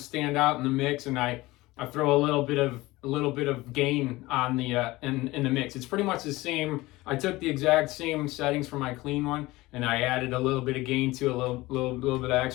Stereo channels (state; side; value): quieter; right; 19.7 dB